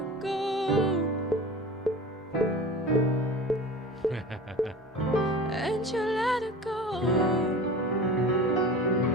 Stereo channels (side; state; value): both; normal; correlation 0.35